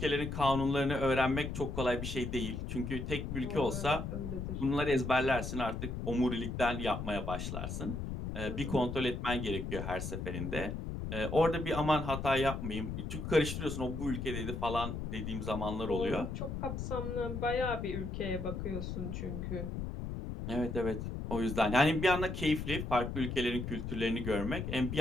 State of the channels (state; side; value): noise; left; rumble, 4 dB below the sound